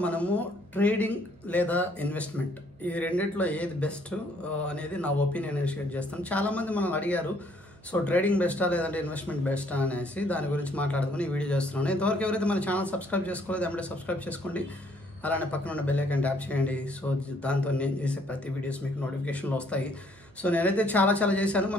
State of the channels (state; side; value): noise; right; hum, 26 dB below the sound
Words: మనము ట్రేడింగ్ లేదా ఇన్వెస్ట్మెంట్ ఈ రెండిట్లో ఏది బెస్ట్ అనేది నా ఒపీనియన్ షేర్ చేస్తాను. చాలామంది మనల్ని అడిగారు, సో ట్రేడింగ్ బెస్టా లేదంటే ఇన్వెస్ట్మెంట్ బెస్టా అనేసి దాని గురించి మాట్లాడుకుని ఈ వీడియో చేస్తున్నాను. ఇంతవరకు ఎవరైతే మన ఛానల్ సబ్స్క్రైబ్ చేసుకోలేదు వెంటనే సబ్స్క్రైబ్ చేసుకోండి, అలానే పక్కన ఉన్న బెల్ ఐకాన్ ట్యాప్ చేయండి. సో దాంతో నేను చేసే ప్రతి వీడియోస్ మీకు నోటిఫికేషన్లో వస్తాయి. సో నేనైతే చాలా చేశాను.